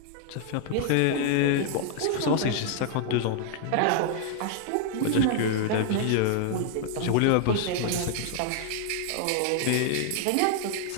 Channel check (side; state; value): both; different; correlation 0.00